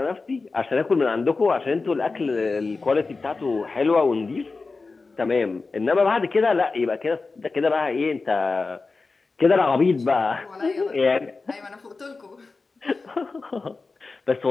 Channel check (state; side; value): quieter; right; 4.0 dB